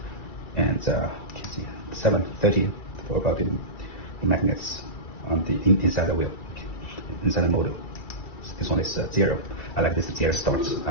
And 7, 13 for about the magnets on the inside the wheel, inside the motor. This one is 0. I like this 0 start. I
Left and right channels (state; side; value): late; right; 2.3 ms